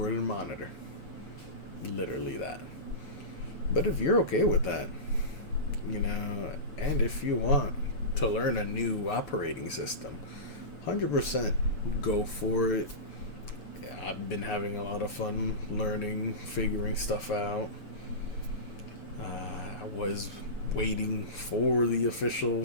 and monitor. Literally that. But if you're okay with that, and if you want to learn a new operating system, 100% go for it. I've been having a lot of fun learning, figuring stuff out. I was waiting for the official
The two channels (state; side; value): late; right; 6.9 ms